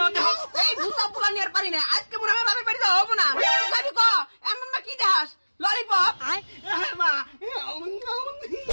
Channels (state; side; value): inverted; both; correlation -1.00